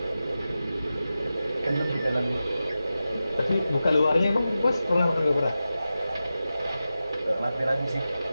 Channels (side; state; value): both; inverted; correlation -0.93